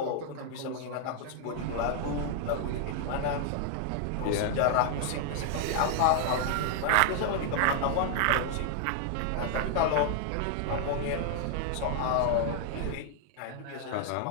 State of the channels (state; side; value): different; both; correlation 0.00